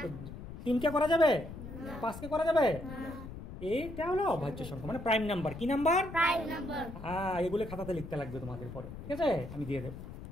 3কে করা যাবে? 5কে করা যাবে? এইটা হলো অভাজ্য সংখ্যা, মানে প্রাইম নাম্বার। কি নাম্বার? Prime number. হ্যাঁ, এগুলো খাতাতে লিখতে লাগবে তোমাদের পরে, ঠিক আছে? আমি দিয়ে দেব।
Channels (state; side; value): noise; left; rumble, 11 dB below the sound